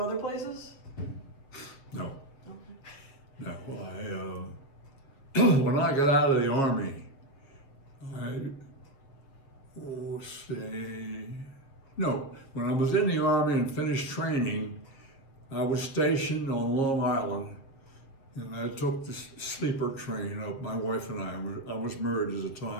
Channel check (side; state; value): right; late; 7.5 ms